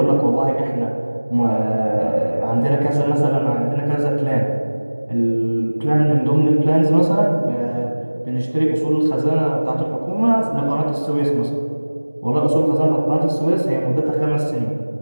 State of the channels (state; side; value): inverted; both; correlation -1.00